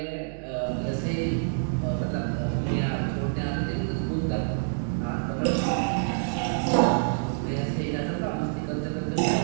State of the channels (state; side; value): silent; left; digital silence